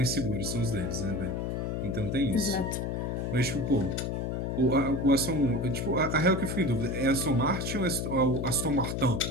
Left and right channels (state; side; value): noise; left; hum, 2 dB below the sound